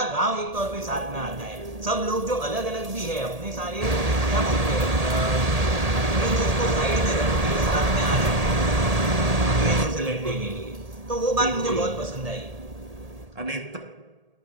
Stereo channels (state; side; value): late; left; 1.8 ms